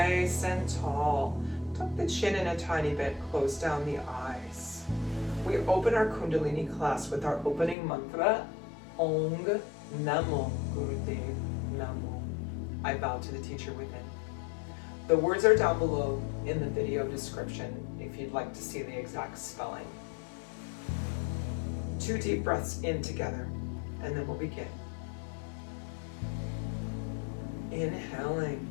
and tall. tuck the chin in a tiny bit, close down the eyes. We open our Kundalini class with our opening mantra, Ong Namo Gurudev Namo. I bow to the teacher within. The words are down below in the video description if you'd like to see the exact spelling. 2 deep breaths in together, and then we'll begin. Inhaling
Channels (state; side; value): drops out; right; at 7.8 s